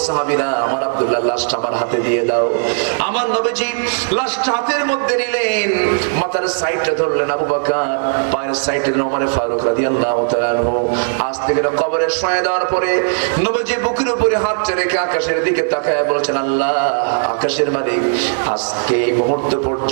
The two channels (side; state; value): left; silent; digital silence